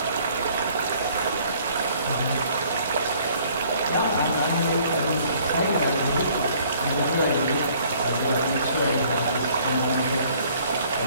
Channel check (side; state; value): both; inverted; correlation -0.59